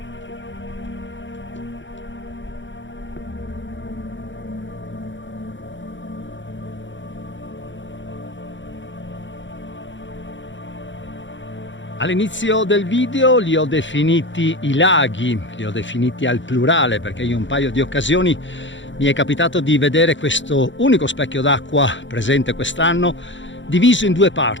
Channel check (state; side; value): late; right; 0.54 ms